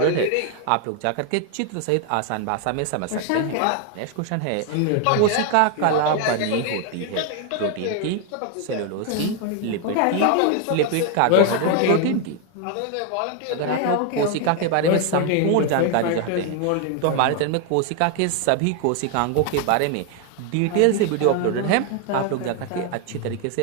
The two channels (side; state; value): both; different; correlation 0.01